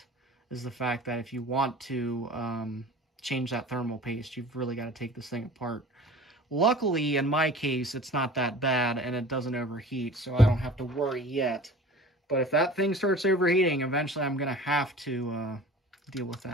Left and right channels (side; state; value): both; normal; correlation 0.42